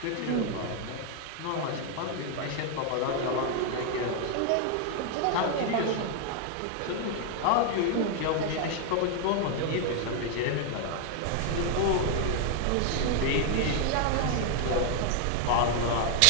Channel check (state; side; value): different; both; correlation 0.00